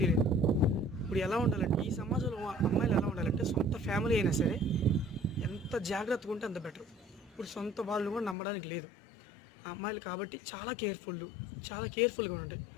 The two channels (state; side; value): drops out; right; at 8.3 s